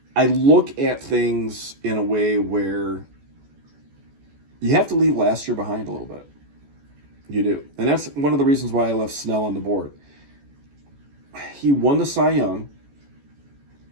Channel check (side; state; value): left; late; 14 ms